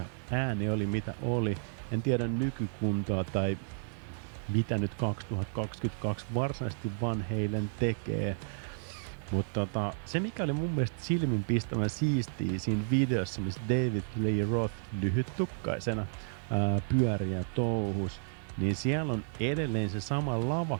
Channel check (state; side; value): silent; left; digital silence